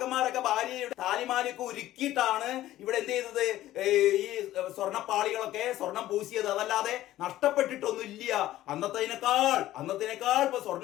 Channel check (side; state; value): right; quieter; 14.5 dB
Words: ഭാര്യയുടെ താലിമാലയൊക്കെ ഉരുക്കിയിട്ടാണ് ഇവിടെ എന്ത് ചെയ്തത്, ഈ സ്വർണ്ണപ്പാളികളൊക്കെ സ്വർണം പൂശിയത്, അതല്ലാതെ നഷ്ടപ്പെട്ടിട്ടൊന്നുമില്ല. അന്നത്തേനേക്കാൾ ഇപ്പൊ